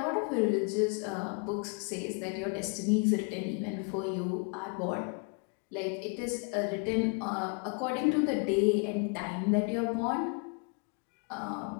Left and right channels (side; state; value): right; quieter; 35.4 dB